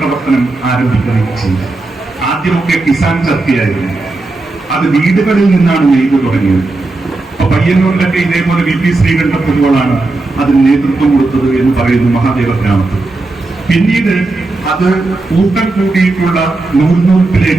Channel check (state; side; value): quieter; left; 3.2 dB